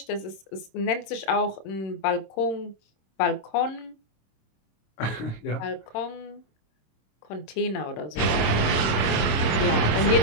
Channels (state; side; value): late; right; 26 ms